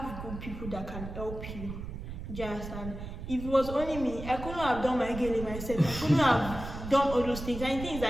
good people that can help you. Do you understand? If it was only me, I couldn't have done my girl myself. I couldn't have done all those things. And the thing is,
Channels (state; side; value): noise; right; rumble, 9 dB below the sound